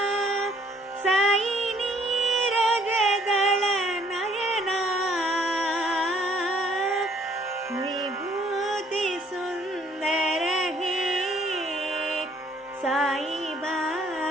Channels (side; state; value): both; normal; correlation 0.62